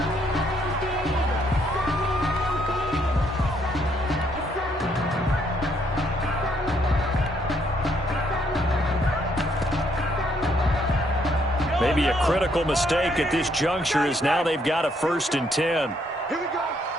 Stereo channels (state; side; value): normal; both; correlation 0.71